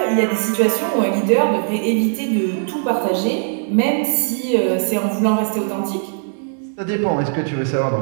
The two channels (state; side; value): silent; left; digital silence